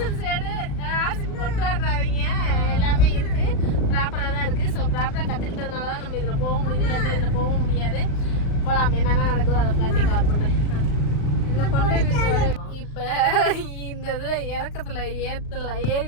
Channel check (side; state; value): right; late; 36 ms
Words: எடு, ஆர்சி கொண்டு வர்றாங்க. எல்லாமே இருக்கு, ப்ராப்பராக தான் இருக்கு. ஸோ ப்ராப்பராக கற்றுக்கிட்டதுனால தான் நம்ம இதில் போக முடியுது, இல்லை இதில் போக முடியாது. போகலாம், என்னென்ன நடக்குதோ அதை ஃப்ளாட்டை கவர் பண்ணுறேன். இப்போ இந்த இதில் இறக்கத்தில் ஏறி